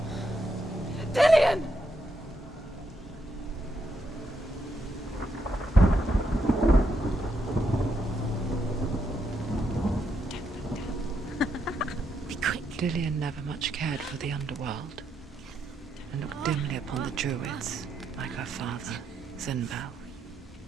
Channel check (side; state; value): both; normal; correlation 0.79